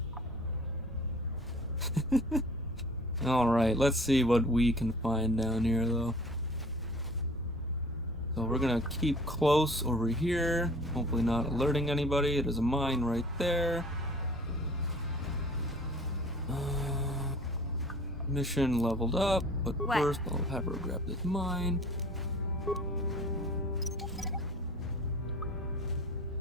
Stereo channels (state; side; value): normal; both; correlation 0.48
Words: Alright, let's see what we can find down here, though. So we're gonna keep close over here, hopefully not alerting anybody. There's a mine right there. Mission leveled up, but first I'll have her grab this mine.